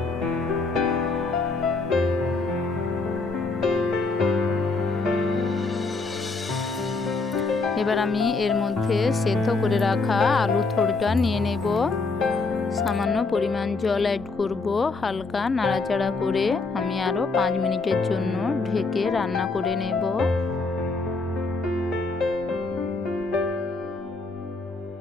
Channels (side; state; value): right; quieter; 3.9 dB